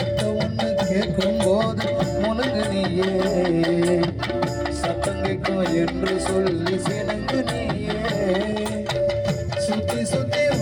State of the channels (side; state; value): both; identical; correlation 1.00